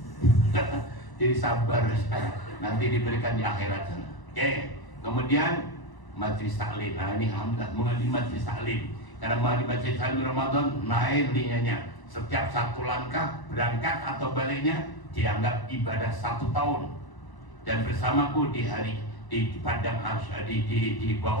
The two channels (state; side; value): late; right; 1.0 ms